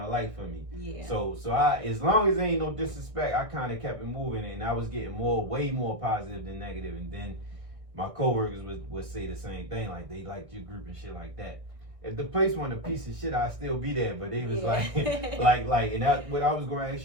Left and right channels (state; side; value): late; left; 1.6 ms